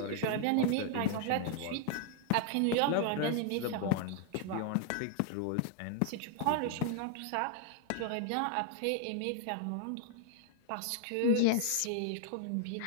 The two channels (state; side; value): different; both; correlation 0.00